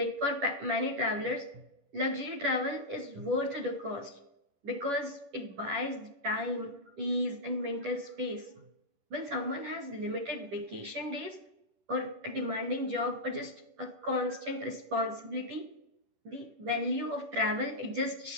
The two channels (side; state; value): left; late; 11 ms